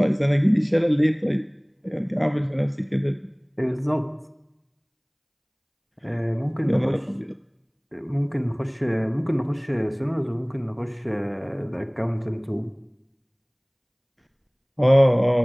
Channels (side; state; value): both; identical; correlation 1.00